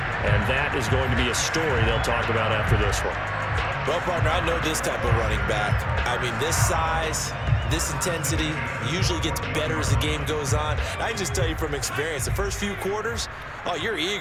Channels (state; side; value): identical; both; correlation 1.00